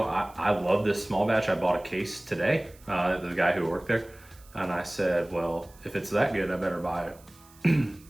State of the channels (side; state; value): right; noise; hiss, 26 dB below the sound